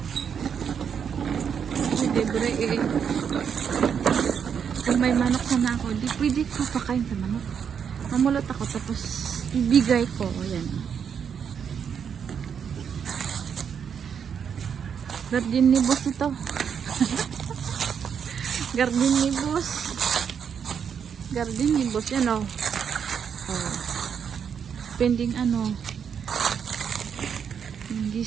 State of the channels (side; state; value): left; quieter; 7.4 dB